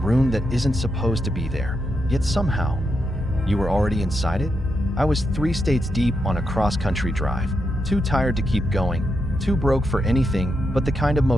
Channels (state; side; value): normal; both; correlation 0.84